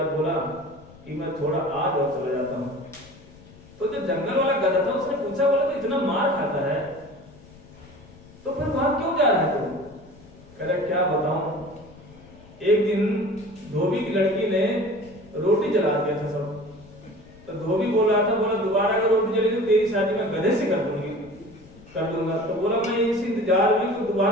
बोला कि मैं थोड़ा आज और चला जाता हूँ। तो जो जंगल वाला गधा था उसने पूछा, बोला तो इतना मार खाता है तो फिर वहां क्यों जा रहा है तू? कह रहा क्या बताऊं, एक दिन धोबी की लड़की ने रोटी जला दिया था सब। तो धोबी बोल रहा था, बोला दोबारा अगर रोटी जली तो तेरी शादी मैं गधे से कर दूंगा। तो बोला मैं इस इंतजार में तो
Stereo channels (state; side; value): noise; left; rumble, 23 dB below the sound